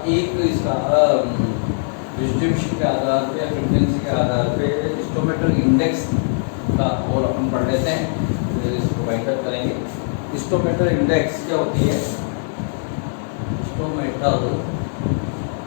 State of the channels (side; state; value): right; silent; 61 dB below the other